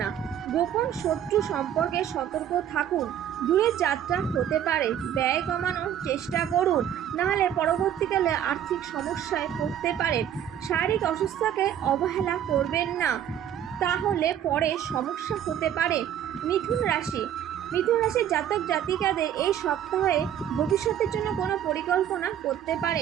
গোপন শত্রু সম্পর্কে সতর্ক থাকুন। দূরের যাত্রা হতে পারে, ব্যয় কমানোর চেষ্টা করুন, নাহলে পরবর্তীকালে আর্থিক সমস্যায় পড়তে পারেন। শারীরিক অসুস্থতাকে অবহেলা করবেন না, তাহলে পরে সমস্যা হতে পারে। মিথুন রাশির জাতক জাতিকাদের এই সপ্তাহে ভবিষ্যতের জন্য কোনো পরিকল্পনা করতে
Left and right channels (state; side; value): quieter; left; 10.1 dB